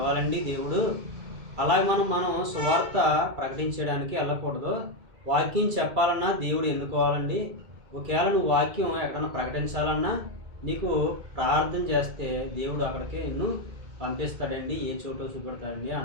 దేవుడు, అలాగే మనం సువార్త ప్రకటించడానికి వెళ్ళకూడదు. వాక్యం చెప్పాలన్నా దేవుడు ఎన్నుకోవాలండి. ఒకవేళ నువ్వు వాక్యం ఎక్కడన్నా ప్రకటించాలన్నా నీకు ప్రార్థన చేస్తే దేవుడు అక్కడికి నిన్ను పంపిస్తాడండి, ఏ చోటో చూపెడతాడండి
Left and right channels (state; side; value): late; left; 2.3 ms